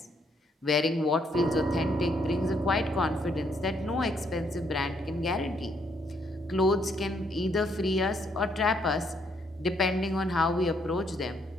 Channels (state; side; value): normal; both; correlation 0.71